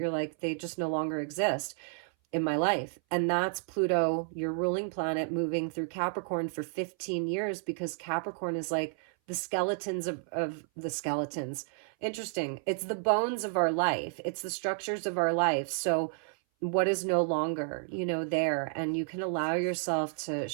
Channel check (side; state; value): left; silent; 57 dB below the other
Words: like, they just no longer exist in my life. And that's Pluto, your ruling planet, moving through Capricorn for 15 years, because Capricorn is like the skeletons of the skeletons. Interesting. It's the bones of our life. It's the structures of our life. So what is no longer, you know, there, and you can allow yourself to